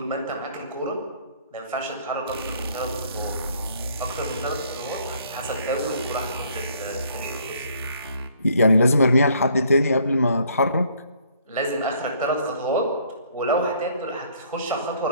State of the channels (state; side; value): inverted; both; correlation -0.62